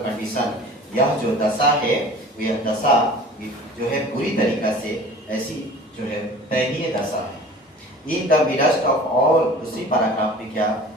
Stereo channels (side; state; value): both; normal; correlation 0.43